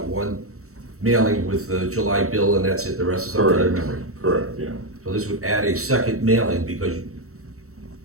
one mailing with the July bill and that's it, the rest is up to their memory. Correct, yeah. So this would add a second mailing because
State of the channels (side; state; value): left; late; 0.64 ms